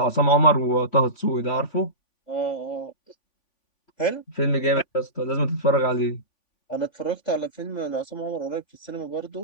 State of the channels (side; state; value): right; late; 3.5 ms